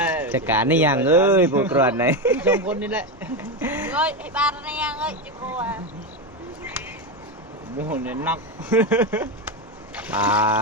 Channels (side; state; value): both; normal; correlation 0.13